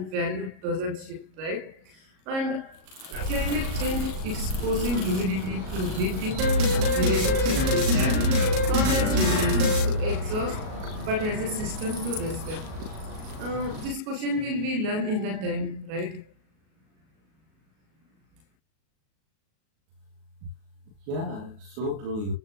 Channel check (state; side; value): late; left; 37 ms